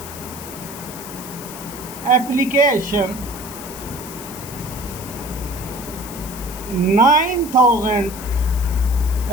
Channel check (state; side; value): noise; left; hiss, 13 dB below the sound